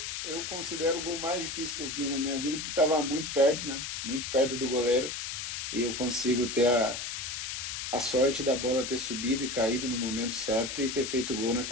considero o gol mais difícil que eu fiz na minha vida, porque estava muito perto, né? Muito perto do goleiro. E eu consigo ter a sorte da bola ter subido e caído no momento certo e ter feito gol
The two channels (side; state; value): left; noise; hiss, 5 dB below the sound